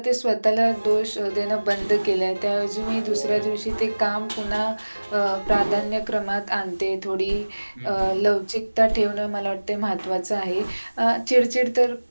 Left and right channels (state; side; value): inverted; both; correlation -1.00